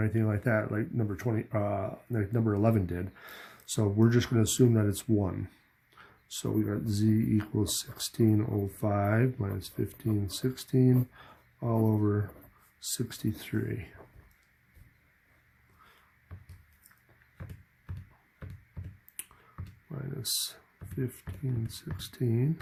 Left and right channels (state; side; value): identical; both; correlation 1.00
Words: anything like that, like number 20, like number 11 did. So we're just going to assume that it's 1. So we got Z equals 1605 minus 1516 all over 63. Minus 1516